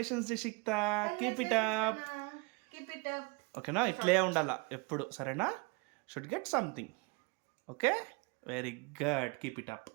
Jeshikta, keep it up. ఓకేనా? ఇట్లే ఉండాలా ఎప్పుడు, సరేనా? Should get something. Okay, very good, keep it up,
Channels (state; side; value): quieter; left; 28.9 dB